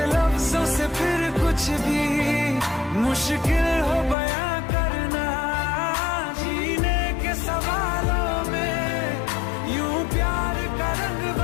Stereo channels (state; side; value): drops out; right; at 4.2 s